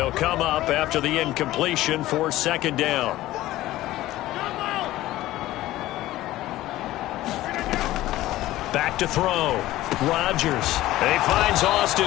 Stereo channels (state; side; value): quieter; right; 15.9 dB